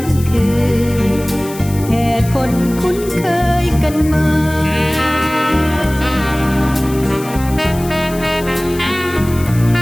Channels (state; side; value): noise; left; hiss, 15 dB below the sound